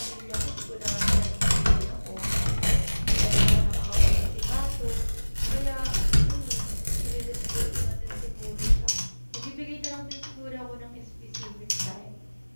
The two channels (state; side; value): inverted; both; correlation -1.00